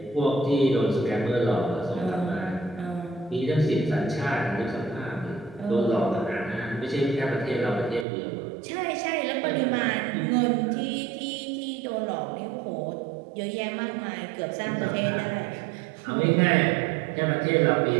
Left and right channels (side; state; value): left; drops out; at 8.1 s